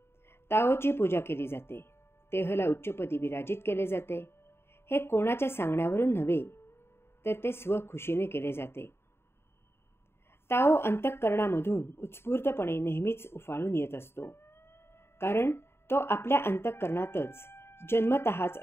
ताओची पूजा केली जाते, तेहला उच्चपदी विराजित केले जाते. हे कोणाच्या सांगण्यावरून नव्हे, तर ते स्वखुशीने केले जाते. ताओ अंतःकरणामधून उत्स्फूर्तपणे नेहमीच उफाळून येत असतो, कारण तो आपल्या अंतःकरणातच जन्मतःच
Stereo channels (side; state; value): right; late; 0.12 ms